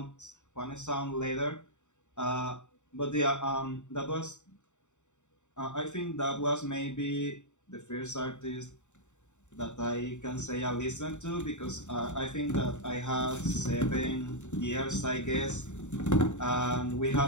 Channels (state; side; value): late; right; 0.84 ms